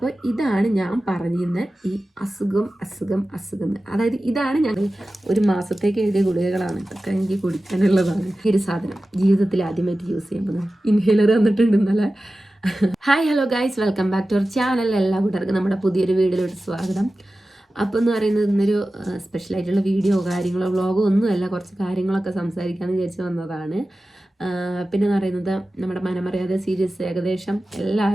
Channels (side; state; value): both; normal; correlation 0.95